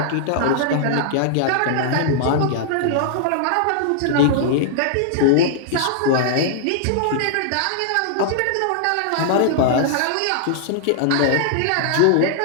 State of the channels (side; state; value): both; different; correlation -0.01